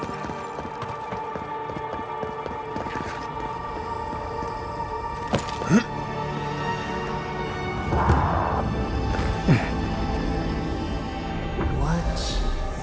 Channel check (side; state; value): both; identical; correlation 1.00